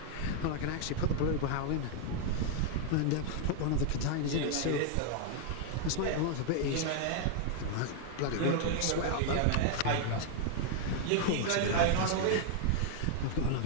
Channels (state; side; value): different; both; correlation 0.00